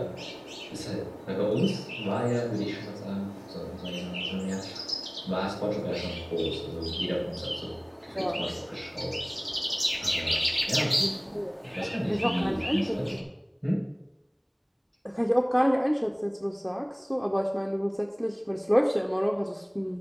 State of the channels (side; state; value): both; identical; correlation 1.00